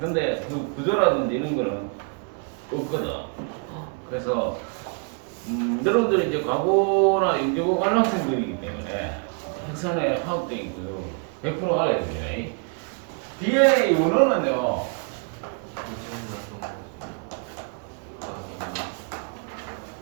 그 구조라든지 이런 거는 없거든. 그래서 여러분들이 이제 과거나 연구고 관람생들이기 때문에 핵산의 화학적인 구조 100% 알아야 됩니다. DNA 원어는요.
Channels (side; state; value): left; quieter; 37.6 dB